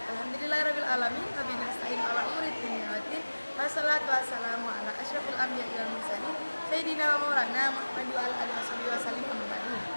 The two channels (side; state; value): both; inverted; correlation -1.00